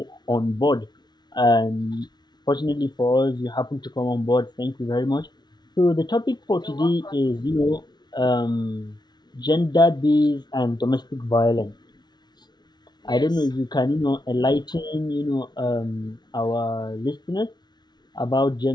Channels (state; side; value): late; right; 0.20 ms